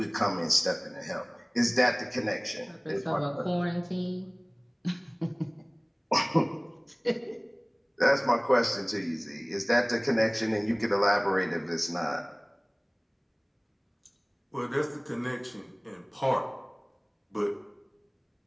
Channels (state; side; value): identical; both; correlation 1.00